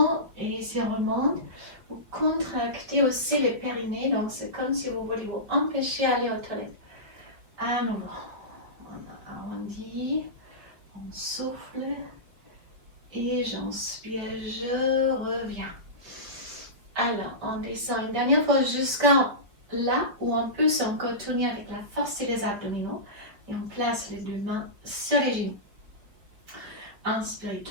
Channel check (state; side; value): late; left; 5.0 ms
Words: et si on remonte, vous contractez aussi les périnées. Donc, c'est comme si vous voulez vous empêcher d'aller aux toilettes. À nouveau, on arrondit, on souffle. Et j'inspire, je reviens. Alors, on descend une dernière fois jusqu'à là où on peut encore tourner avec la force des abdominaux. Et on place les deux mains sur les genoux. Inspirez,